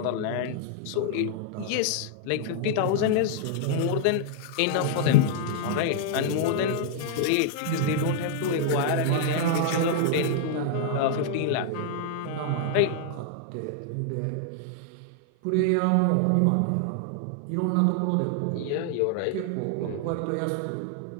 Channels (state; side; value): different; both; correlation -0.01